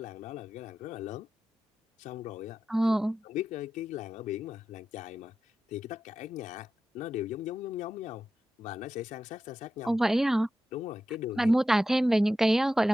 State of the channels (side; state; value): both; normal; correlation 0.91